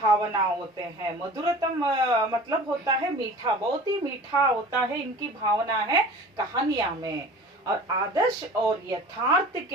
होते हैं, मधुरतम मतलब होता है मीठा, बहुत ही मीठा होता है इनकी भावना है कहानियां में। और आदर्श और यथार्थ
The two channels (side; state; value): both; normal; correlation 0.41